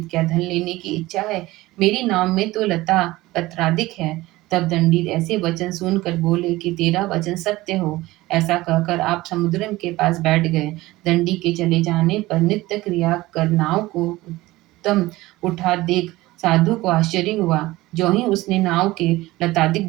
क्या धन लेने की इच्छा है? मेरी नाव में तो लता पत्रादिक है। तब दंडी ऐसे वचन सुनकर बोले कि तेरा वचन सत्य हो। ऐसा कहकर आप समुद्र के पास बैठ गए। दंडी के चले जाने पर नित्य क्रिया कर नाव को उत्तम उठा देख साधु को आश्चर्य हुआ। जो ही उसने नाव के लतादिक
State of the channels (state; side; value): quieter; left; 18.7 dB